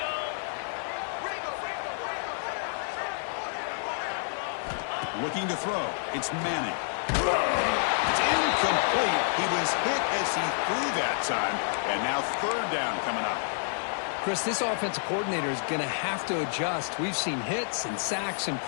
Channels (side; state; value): right; silent; digital silence